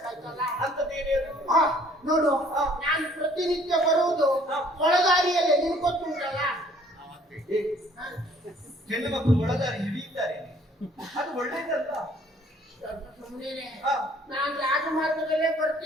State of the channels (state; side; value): normal; both; correlation 0.58